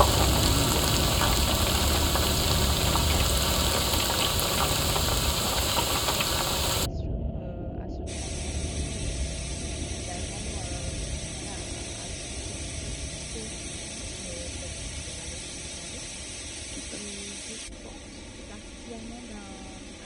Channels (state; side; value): identical; both; correlation 1.00